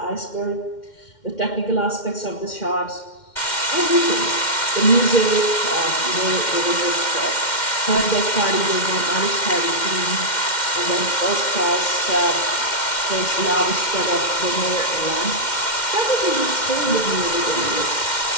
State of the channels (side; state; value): right; late; 2.1 ms